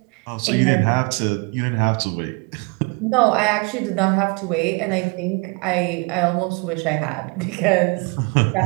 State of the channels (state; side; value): quieter; left; 30.7 dB